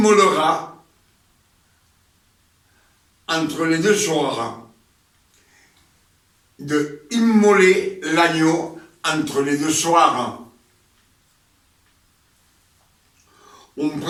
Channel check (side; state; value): both; identical; correlation 1.00